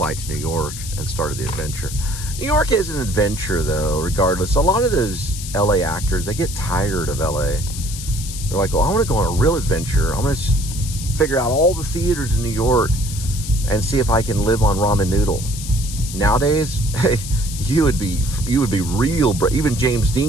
to New York and started the adventure. New York is an adventure, though, regardless. A lot of those LA actors, they get tired of LA. They're like, well, I want to go on a real adventure. I'm going to figure out all the theaters in New York and see if I can live on ramen noodle. Nowadays, hey, you would be real. Even James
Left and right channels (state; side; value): noise; left; hiss, 10 dB below the sound